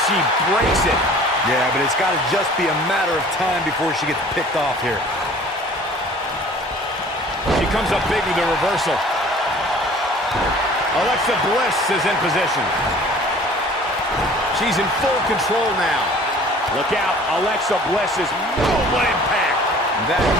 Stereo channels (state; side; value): normal; both; correlation 0.49